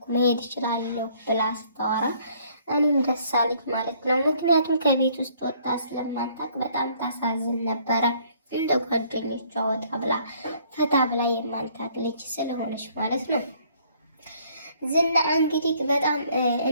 መሄድ እችላለሁ ብላ ስታወራ እኔም ደስ አለኝ ማለት ነው። ምክንያቱም ከቤት ውስጥ ወጣ ስለማታውቅ በጣም ታሳዝን ነበረ። እንደ ጓደኞቿ ወጣ ብላ ፈታ ብላ የማንታቅ ልጅ ስለሆነች ማለት ነው። ዝና እንግዲህ በጣም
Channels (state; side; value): inverted; both; correlation -0.62